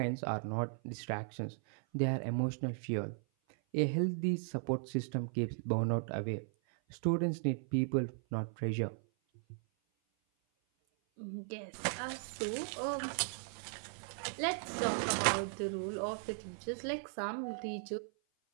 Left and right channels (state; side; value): silent; left; 53 dB below the other